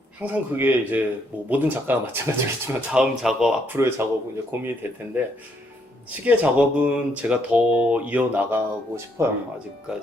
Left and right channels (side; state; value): both; normal; correlation 0.73